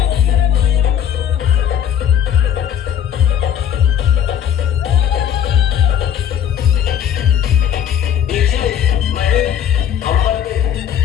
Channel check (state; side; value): quieter; right; 9.3 dB